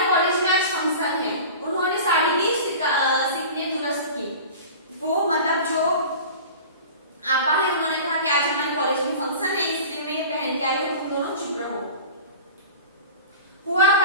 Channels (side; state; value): both; inverted; correlation -0.37